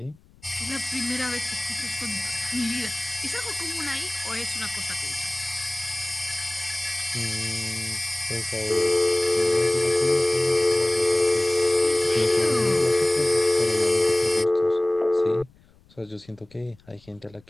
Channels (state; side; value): noise; left; rumble, 29 dB below the sound